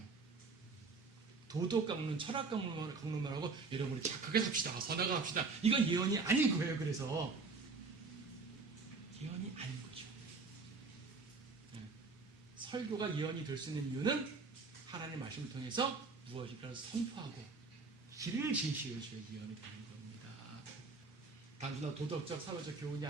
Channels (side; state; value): left; quieter; 4.2 dB